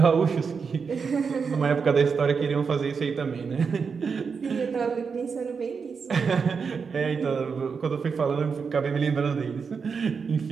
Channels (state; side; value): quieter; left; 5.6 dB